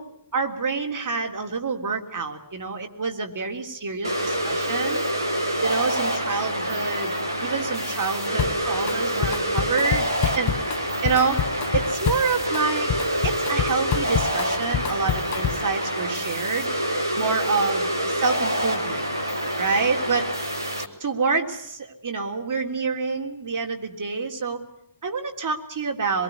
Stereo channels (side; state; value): both; inverted; correlation -0.50